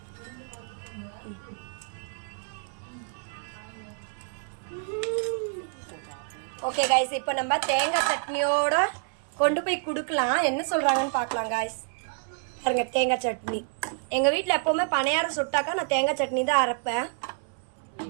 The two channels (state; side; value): silent; left; 59 dB below the other